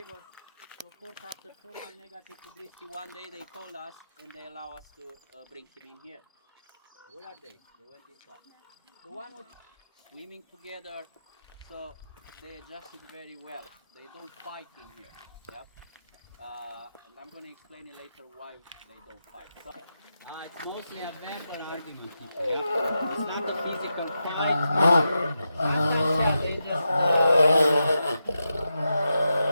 So of course after so much negative publicity, one day they called us and they allow us to bring him in here. Where are they? They went inside. The one with swimming together, so they adjusted very well. They don't fight in here. Yep. And I'm going to explain it later why they don't fight. So, it's mostly a verbal argument. Yeah? It's not a physical fight. They just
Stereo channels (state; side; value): inverted; both; correlation -0.88